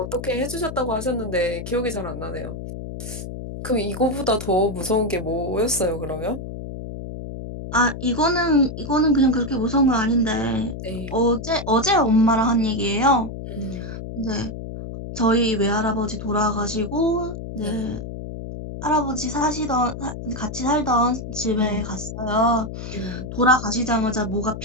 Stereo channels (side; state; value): left; noise; hum, 8 dB below the sound